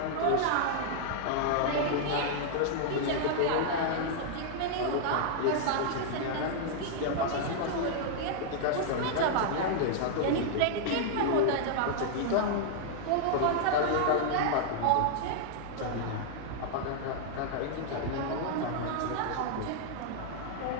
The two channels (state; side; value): different; both; correlation -0.01